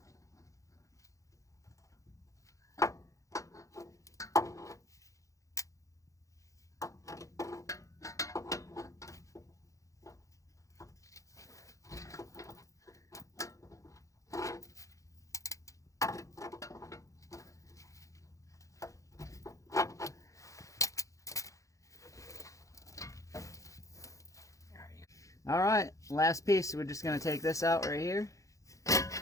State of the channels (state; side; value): late; right; 0.16 ms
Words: All right, last piece. We're just gonna take this out right here,